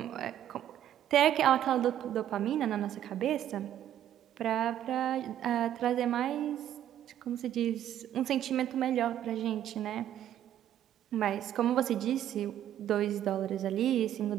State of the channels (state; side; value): quieter; left; 11.3 dB